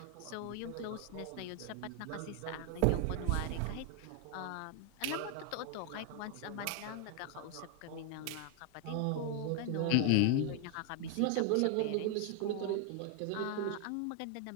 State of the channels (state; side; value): different; both; correlation 0.00